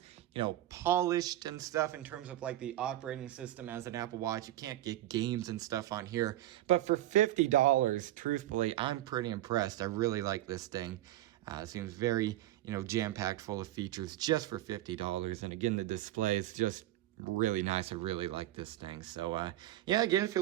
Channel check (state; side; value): quieter; left; 14.4 dB